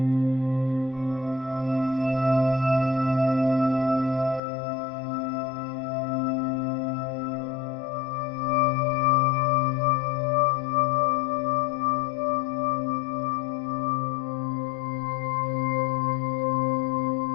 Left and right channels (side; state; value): right; drops out; at 4.4 s